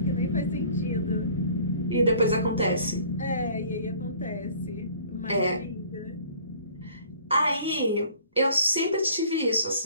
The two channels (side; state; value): both; inverted; correlation -0.52